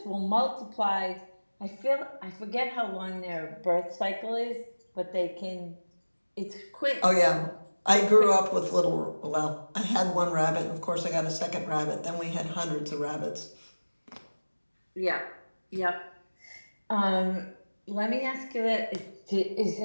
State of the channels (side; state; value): both; inverted; correlation -1.00